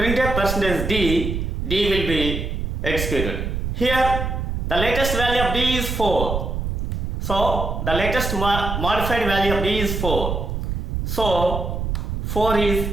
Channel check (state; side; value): noise; right; rumble, 3 dB below the sound